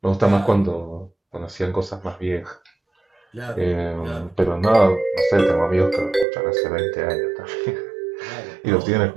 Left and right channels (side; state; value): left; drops out; at 6.2 s